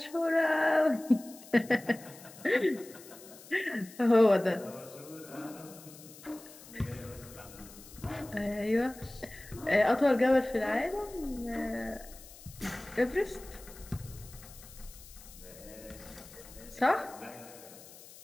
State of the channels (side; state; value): left; noise; hiss, 19 dB below the sound